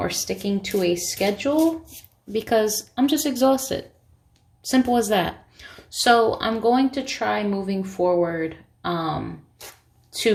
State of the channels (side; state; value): both; identical; correlation 1.00